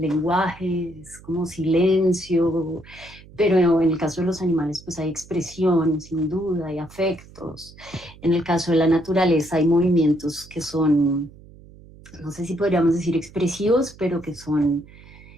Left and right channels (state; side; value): noise; right; hum, 21 dB below the sound